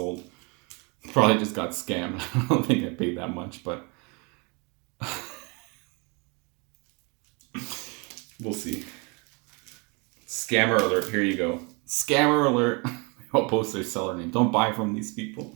Probably just got scammed. I don't think I paid that much, but we'll see. Scammer alert. Here you go. Scammer alert. I'll post their seller name. Don't buy from these people.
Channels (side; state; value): left; quieter; 31.1 dB